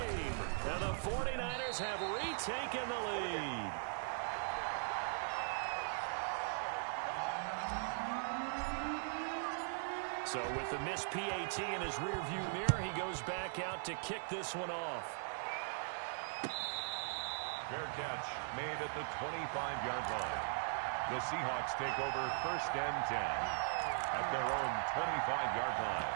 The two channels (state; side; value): silent; left; 51 dB below the other